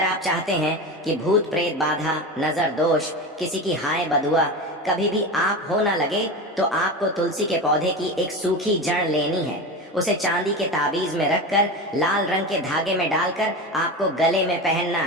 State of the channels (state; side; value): normal; both; correlation 0.24